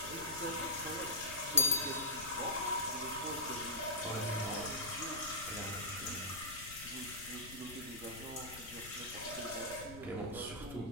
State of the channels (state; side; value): noise; left; rumble, 15 dB below the sound